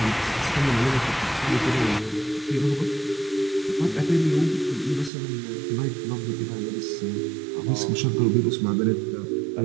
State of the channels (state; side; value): drops out; left; at 5.1 s